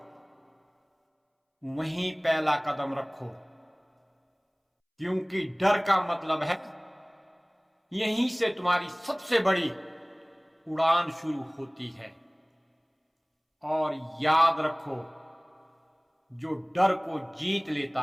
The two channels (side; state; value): both; identical; correlation 1.00